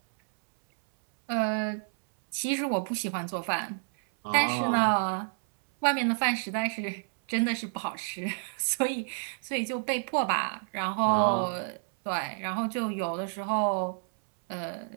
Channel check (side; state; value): left; silent; 58 dB below the other